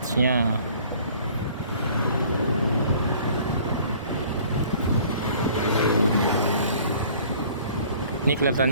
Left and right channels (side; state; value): both; inverted; correlation -0.53